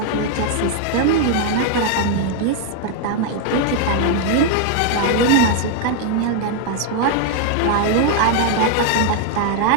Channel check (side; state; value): both; different; correlation 0.00